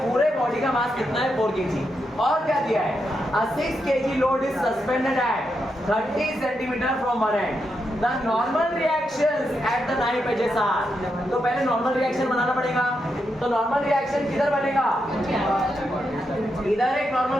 पूरे बॉडी का मास कितना है? 4 kg। और क्या दिया है? A 6 kg load is suspended at 30 centimeter from one end। The normal reactions at the knife edges are। तो पहले नॉर्मल रिएक्शन बनाना पड़ेगा। तो नॉर्मल रिएक्शन किधर बनेगा? इधर एक नॉर्मल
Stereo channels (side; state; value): both; normal; correlation 0.84